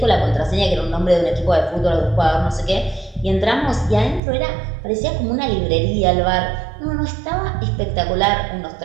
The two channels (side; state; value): left; drops out; at 4.2 s